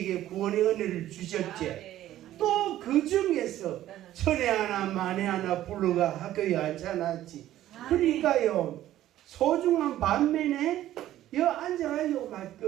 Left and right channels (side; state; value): left; quieter; 13.4 dB